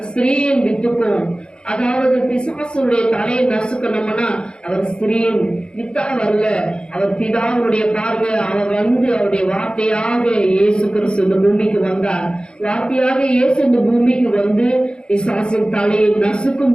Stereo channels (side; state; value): right; late; 0.052 ms